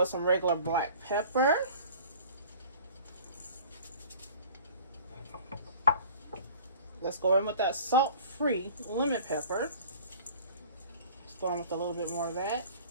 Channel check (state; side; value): inverted; both; correlation -0.45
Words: some regular black pepper. Let's go in with that salt-free lemon pepper. Let's go on with a little bit more of that.